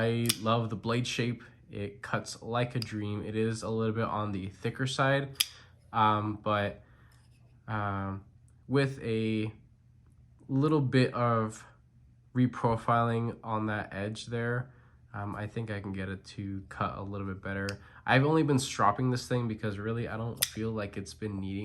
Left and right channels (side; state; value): both; identical; correlation 1.00